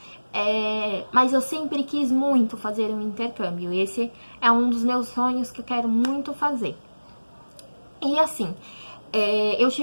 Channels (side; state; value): both; inverted; correlation -1.00